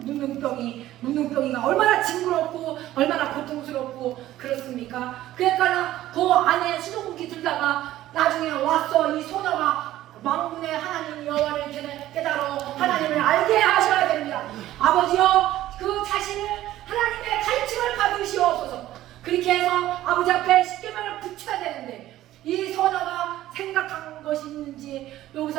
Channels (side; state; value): left; quieter; 14.3 dB